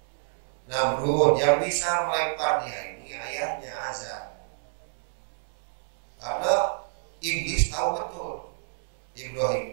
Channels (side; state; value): left; silent; digital silence